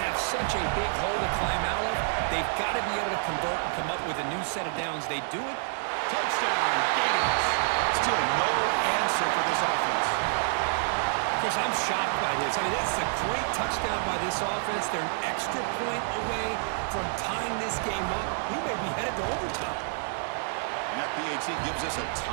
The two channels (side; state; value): left; silent; 59 dB below the other